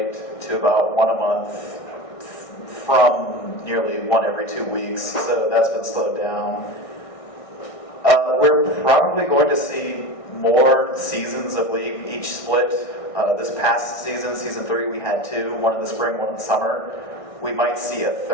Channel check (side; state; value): right; late; 1.6 ms